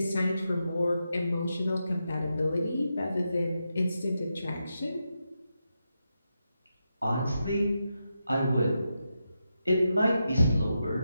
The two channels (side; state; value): both; inverted; correlation -0.86